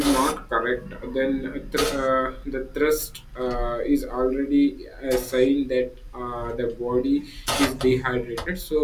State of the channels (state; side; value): identical; both; correlation 1.00